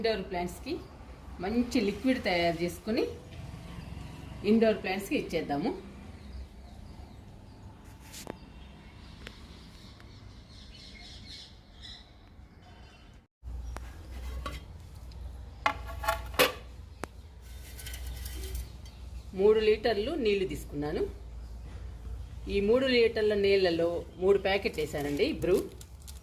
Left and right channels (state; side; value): identical; both; correlation 1.00